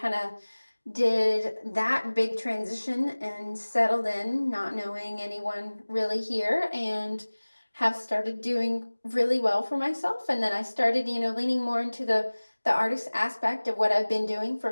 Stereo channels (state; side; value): inverted; both; correlation -1.00